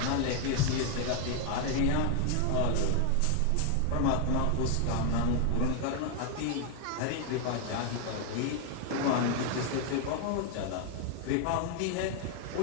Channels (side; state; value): both; different; correlation 0.00